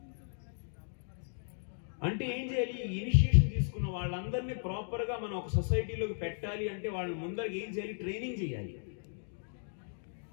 అంటే ఏం చేయాలి, ఇనిషియేషన్ తీసుకున్న వాళ్ళందరినీ ప్రాపర్ గా మనం ఒక సొసైటీలోకి పెట్టాలి అంటే వాళ్ళని ముందరికి ఏం చేయాలి, ట్రైనింగ్ చేయాలి.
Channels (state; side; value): silent; right; digital silence